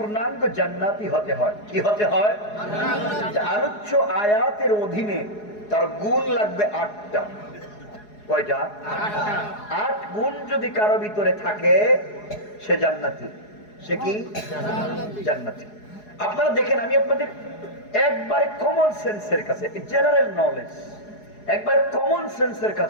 জান্নাতি হতে হয়, কি হতে হয়? আলোচ্য আয়াতের অধীনে তার গুণ লাগবে ৮টা। কয়টা? ৮ গুণ যদি কারো ভিতরে থাকে সে জান্নাতি। সে কি? জান্নাতি। আপনারা দেখেন, আমি আপনাদের একবারে কমন সেন্সের কাছে, জেনারেল নলেজ, একবারে কমন সেন্সের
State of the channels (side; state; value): right; late; 4.8 ms